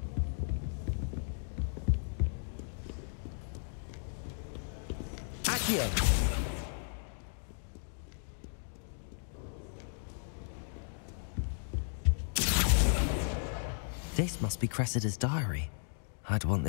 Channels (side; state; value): right; silent; digital silence